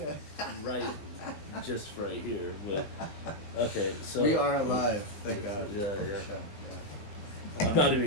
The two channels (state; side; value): late; right; 19 ms